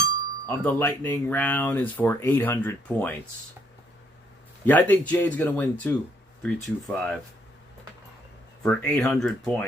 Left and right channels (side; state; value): both; normal; correlation 0.70